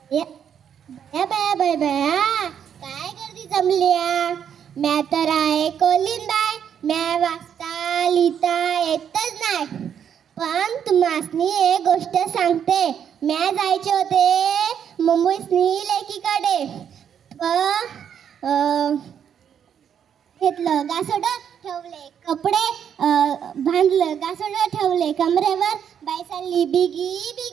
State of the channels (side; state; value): left; quieter; 8.5 dB